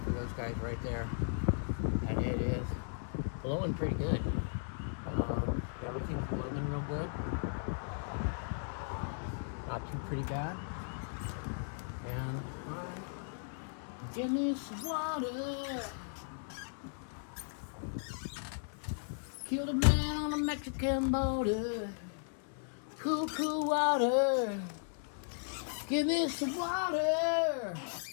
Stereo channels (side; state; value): right; silent; digital silence